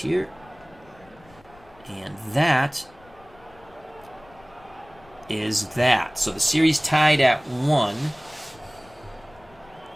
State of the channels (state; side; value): noise; left; rumble, 26 dB below the sound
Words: And that is that. So the series tied at 1.